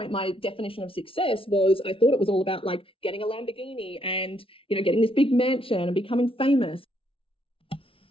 my definition of success was, I thought it was all about like getting a Lamborghini and, getting this big mansion and becoming famous.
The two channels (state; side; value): late; right; 0.26 ms